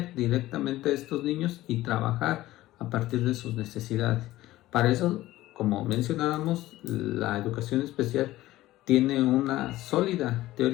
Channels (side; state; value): right; quieter; 16.2 dB